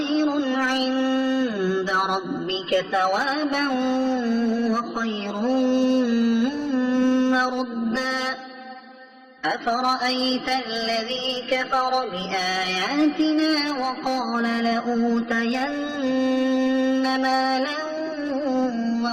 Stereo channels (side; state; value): both; identical; correlation 1.00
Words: عند ربك ثوابا وخير مردا أفرأيت الذي كفر بآياتنا وقال لأوتين مالا